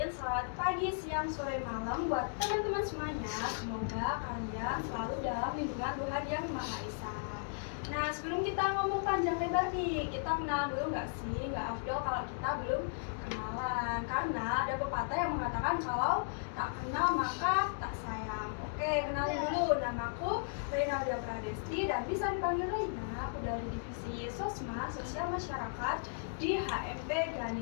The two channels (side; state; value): right; silent; digital silence